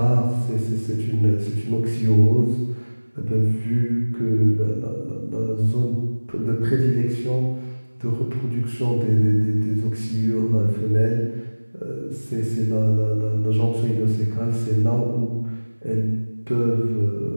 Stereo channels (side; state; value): both; inverted; correlation -1.00